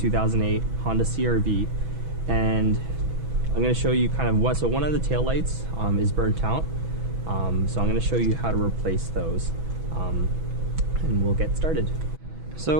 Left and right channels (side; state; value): left; late; 6.1 ms